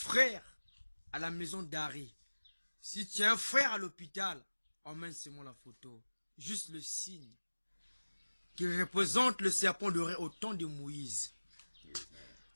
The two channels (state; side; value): inverted; both; correlation -1.00